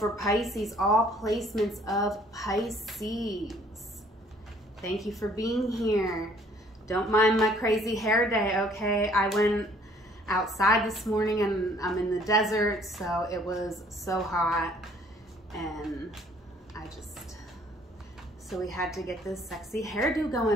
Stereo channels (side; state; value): both; normal; correlation 0.59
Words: Pisces, all placements of Pisces. Thank you for being here. Don't mind my crazy hair day, okay? I went outside this morning and I'm in the desert, so it was so hot. And so we had to get this sexy hairdo